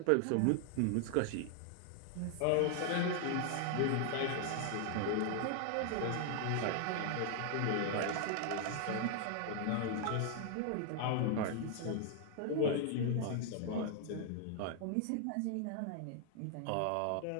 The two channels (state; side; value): different; both; correlation 0.00